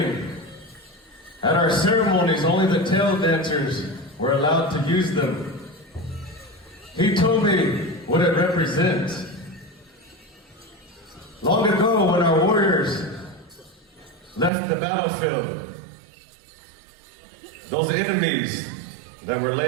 at our ceremonies, only the tail dancers were allowed to use them. He told me what it represents. Long ago, when our warriors left the battlefield, those enemies that were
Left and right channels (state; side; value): drops out; left; at 14.5 s